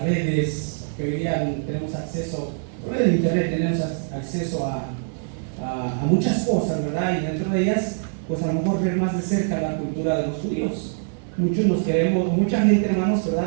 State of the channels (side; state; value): left; silent; 58 dB below the other